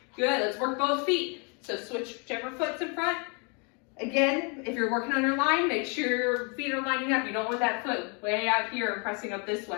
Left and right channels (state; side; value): quieter; right; 34.7 dB